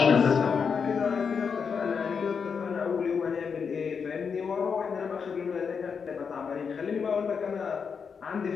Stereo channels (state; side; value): quieter; right; 6.1 dB